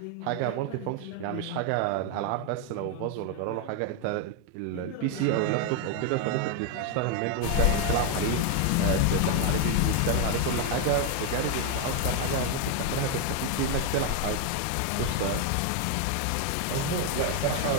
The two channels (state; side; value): different; both; correlation 0.01